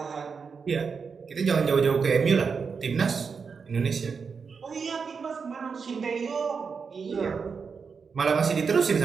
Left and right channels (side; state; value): left; quieter; 5.6 dB